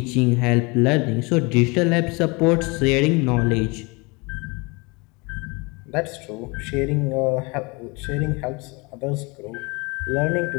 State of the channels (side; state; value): right; quieter; 27.7 dB